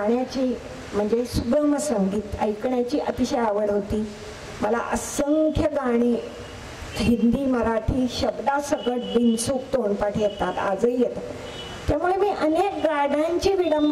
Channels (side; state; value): both; identical; correlation 1.00